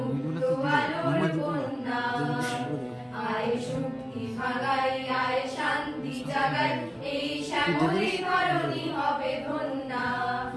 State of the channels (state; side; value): identical; both; correlation 1.00